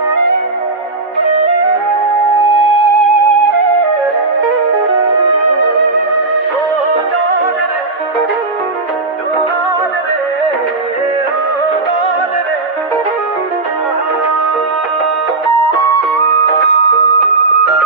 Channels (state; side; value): quieter; left; 3.5 dB